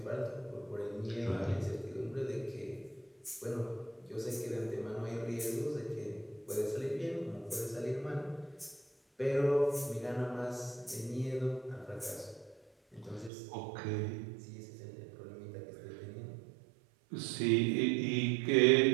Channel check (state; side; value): drops out; left; at 13.3 s